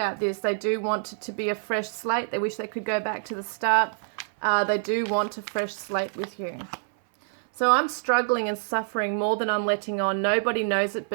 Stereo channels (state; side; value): silent; left; 61 dB below the other